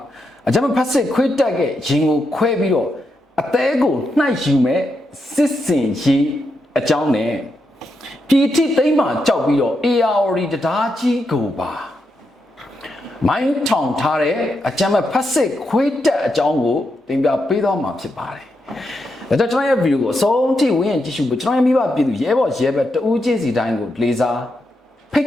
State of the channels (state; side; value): normal; both; correlation 0.83